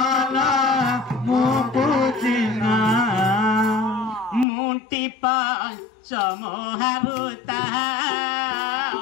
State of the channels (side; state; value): right; drops out; at 4.5 s